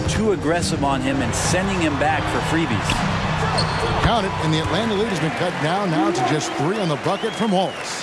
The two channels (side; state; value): both; identical; correlation 1.00